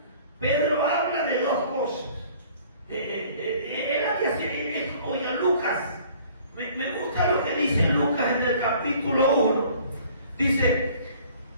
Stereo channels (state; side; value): inverted; both; correlation -0.53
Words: Pedro habla de dos cosas. Oye, Lucas, me gusta lo que dice Lucas en el capítulo 1. Dice: